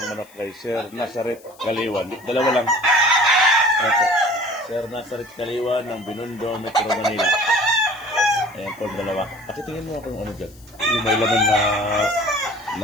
manok kay Sir Nazareth Kaliwan. Dalawa lang. Ayan po. Sir Nazareth Kaliwan ng Binondo, Metro Manila. Ayan po, dalawa. Pakitingin mo ako yung ano dyan. Yung may laman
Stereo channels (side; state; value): left; noise; hiss, 26 dB below the sound